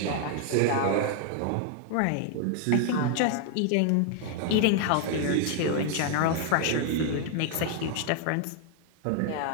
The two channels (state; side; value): different; both; correlation 0.00